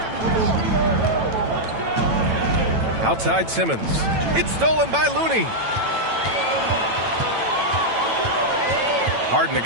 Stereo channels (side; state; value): left; late; 9.0 ms